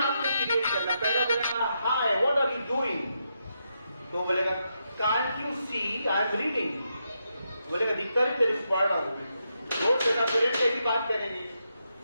क्रिएट करना। पहला बोलेगा hi what are you doing, तो बोलेगा can't you see I am reading, बोलेगा दिक्कत है तेरे पढ़ रहा हूं। वो तेरा पेरेंट कैसी बात करेंगे।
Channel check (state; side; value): inverted; both; correlation -0.83